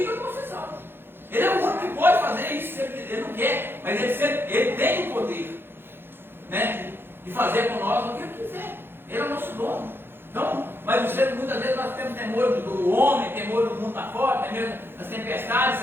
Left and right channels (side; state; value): left; late; 0.10 ms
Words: que eu não vou ser salvo. Ele é o único que pode fazer isso, se ele não quer, mas ele tem o poder, né, de fazer com nós o que ele quiser. Ele é o nosso dono. Então, mas muitas vezes nós temos temor do homem, temor do mundo lá fora, temor das tempestades,